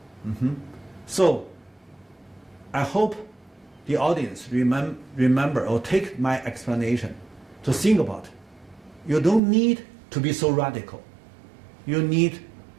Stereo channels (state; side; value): drops out; left; at 9.4 s